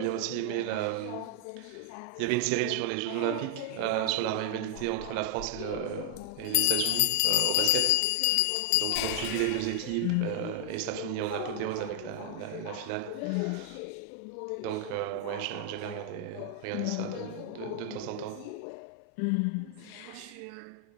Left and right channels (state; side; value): different; both; correlation 0.00